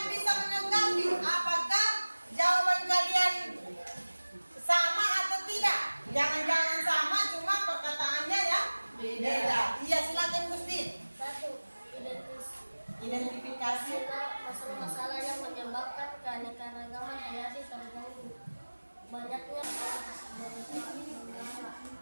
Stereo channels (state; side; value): inverted; both; correlation -1.00